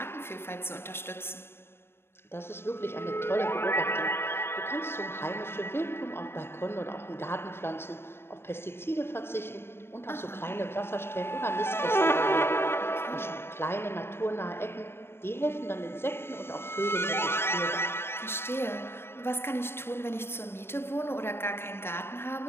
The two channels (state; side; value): late; right; 0.12 ms